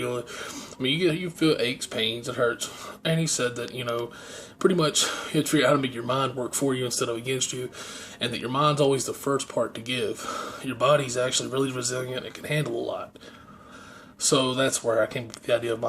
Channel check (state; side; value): identical; both; correlation 1.00